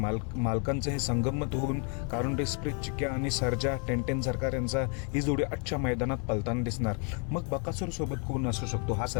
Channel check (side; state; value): right; quieter; 38.9 dB